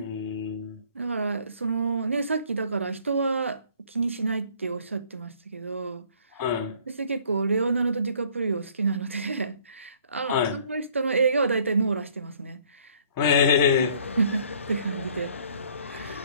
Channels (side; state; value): both; inverted; correlation -0.58